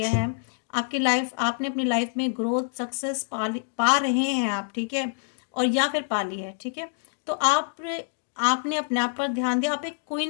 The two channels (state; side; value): silent; right; digital silence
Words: है, आपकी लाइफ, आपने अपनी लाइफ में ग्रोथ सक्सेस पा रहे हैं आप, ठीक है, और या फिर पा ली है, ठीक है। तो आपने अपने आप पर ध्यान दिया, आप एक